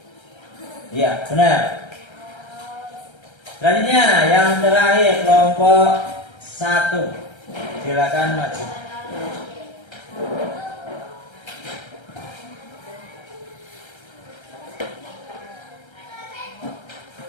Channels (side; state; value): right; late; 1.3 ms